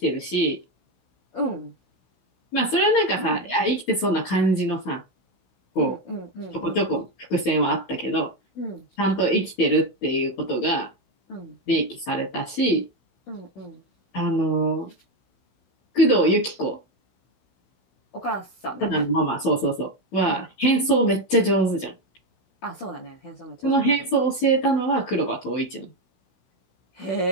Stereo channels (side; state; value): right; late; 16 ms